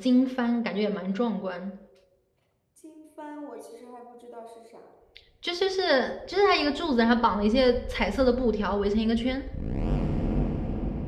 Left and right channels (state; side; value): identical; both; correlation 1.00